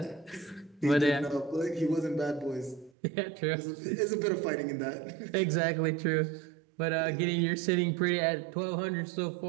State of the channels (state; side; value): drops out; left; at 2.9 s